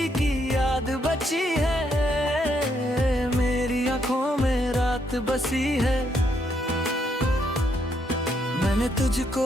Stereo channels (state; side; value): normal; both; correlation 0.75